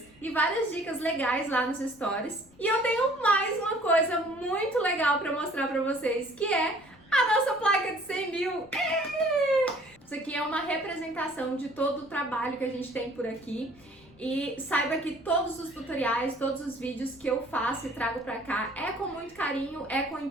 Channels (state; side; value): noise; left; rumble, 28 dB below the sound